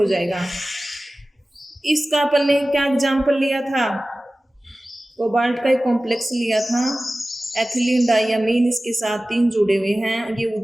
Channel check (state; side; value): normal; both; correlation 0.97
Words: जाएगा। इसका अपन ने क्या एग्जाम्पल लिया था? कोबाल्ट का एक कॉम्प्लेक्स लिया था, एथिलीन डाइयामीन, इसके साथ 3 जुड़े हुए हैं। ये